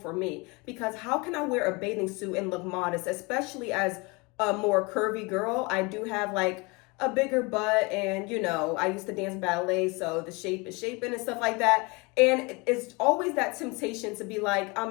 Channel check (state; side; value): quieter; right; 27.3 dB